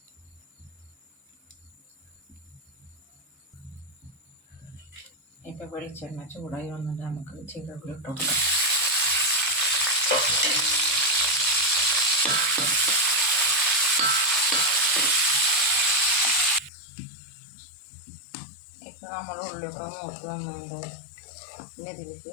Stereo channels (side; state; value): right; drops out; at 16.7 s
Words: ഇപ്പം വെളിച്ചെണ്ണ ചൂടായി വന്നിട്ട് നമുക്ക് ജീരകം ഇട്ട് കൊടുക്കാം. ഇപ്പം നമ്മൾ ഉള്ളിയൊക്കെ മൂത്ത് വന്നുകൊണ്ട് പിന്നെ ഇതിലേക്ക്